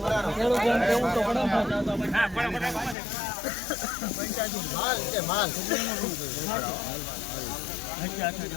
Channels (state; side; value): drops out; right; at 3.0 s